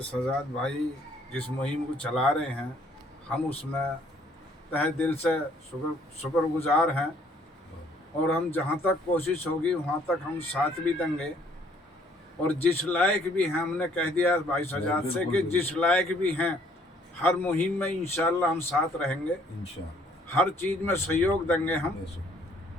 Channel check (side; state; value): both; normal; correlation 0.62